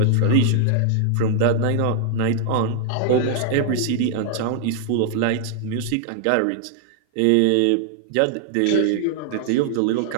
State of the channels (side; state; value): both; different; correlation 0.00